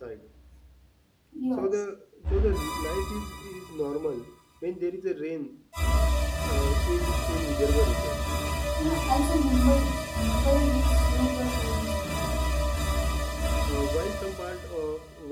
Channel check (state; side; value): identical; both; correlation 1.00